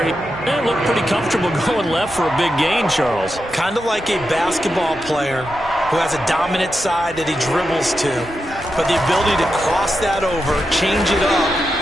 he looked pretty comfortable going left for a big gain, Charles. Kind of like a basketball player who has a dominant side that he dribbles to, but the ability to cross that over, change it up,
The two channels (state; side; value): normal; both; correlation 0.88